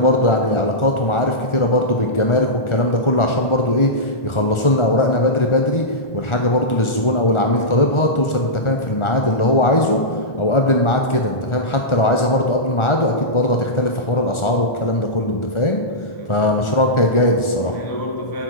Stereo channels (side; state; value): right; late; 1.4 ms